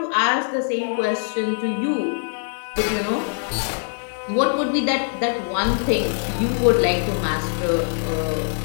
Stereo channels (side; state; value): right; silent; 55 dB below the other